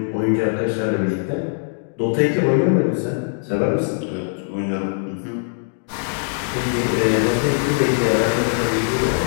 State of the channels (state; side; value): silent; right; digital silence